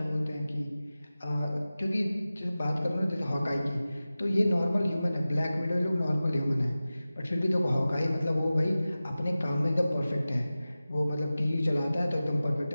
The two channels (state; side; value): inverted; both; correlation -0.96